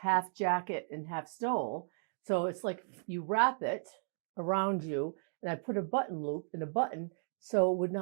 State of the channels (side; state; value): left; silent; digital silence